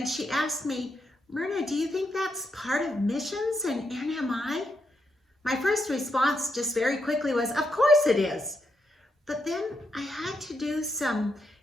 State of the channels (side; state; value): both; normal; correlation 0.81